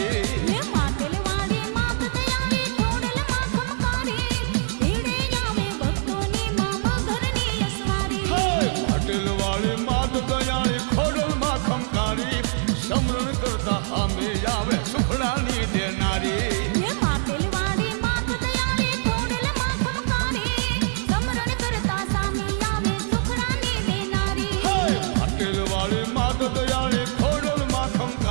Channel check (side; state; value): left; silent; digital silence